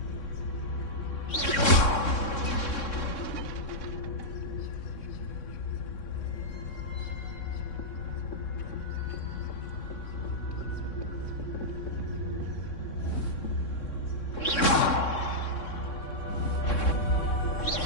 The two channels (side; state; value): right; late; 3.6 ms